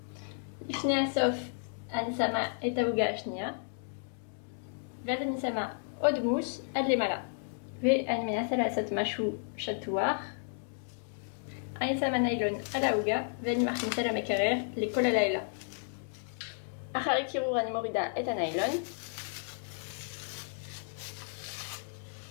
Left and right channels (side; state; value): right; silent; digital silence